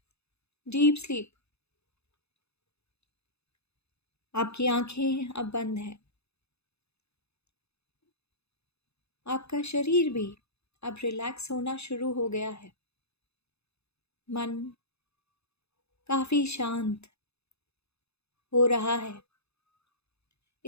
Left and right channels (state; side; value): late; right; 0.79 ms